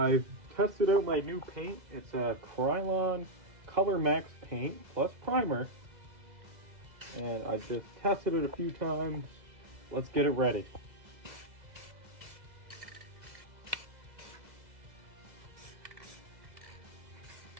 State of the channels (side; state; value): left; late; 2.0 ms